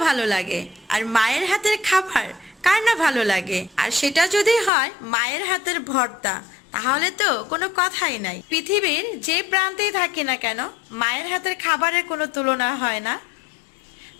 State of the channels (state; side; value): drops out; right; at 4.7 s